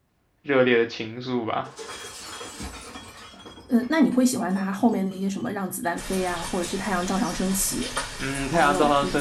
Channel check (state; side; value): identical; both; correlation 1.00